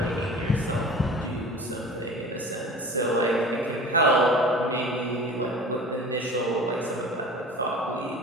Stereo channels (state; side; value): normal; both; correlation 0.39